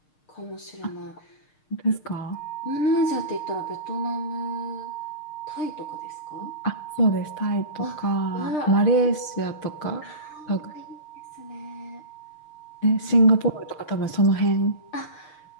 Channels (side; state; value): right; late; 6.5 ms